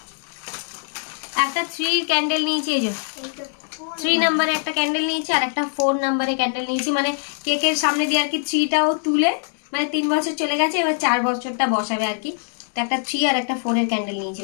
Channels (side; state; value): right; silent; 64 dB below the other